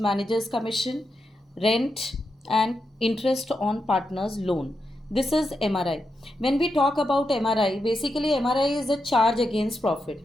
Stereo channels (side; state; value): both; normal; correlation 0.86